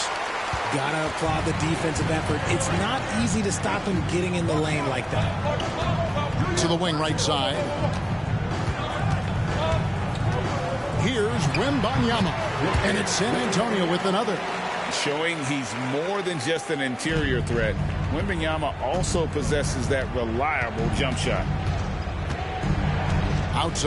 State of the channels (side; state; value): both; identical; correlation 1.00